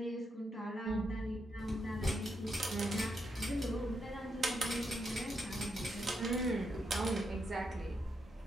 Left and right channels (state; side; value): normal; both; correlation 0.81